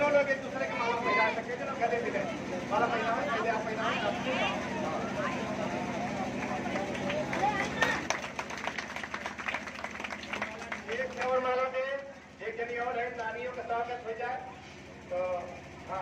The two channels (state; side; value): identical; both; correlation 1.00